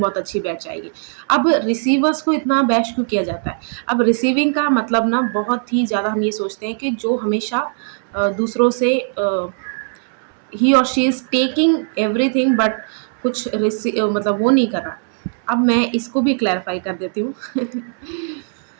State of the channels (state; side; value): silent; left; 66 dB below the other